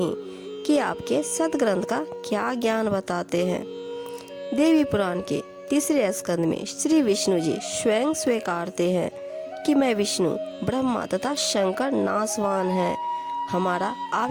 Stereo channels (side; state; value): both; identical; correlation 1.00